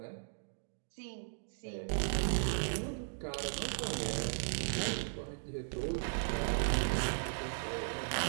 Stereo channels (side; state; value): left; silent; digital silence